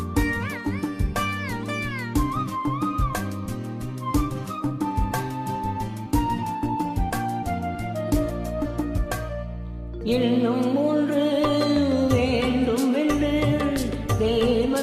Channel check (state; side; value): identical; both; correlation 1.00